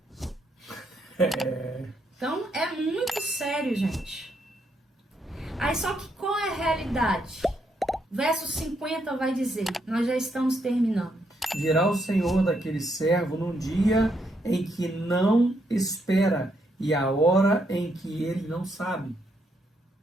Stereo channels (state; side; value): normal; both; correlation 0.76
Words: Então, é muito sério, gente. Aí, só que qual é a realidade? Verso 50 vai dizer, nós já estamos terminando. Virá o Senhor daquele servo num dia em que não espera e a hora em que ele não sabe.